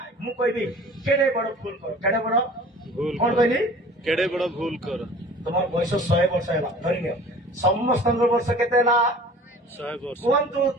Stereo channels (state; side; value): normal; both; correlation 0.45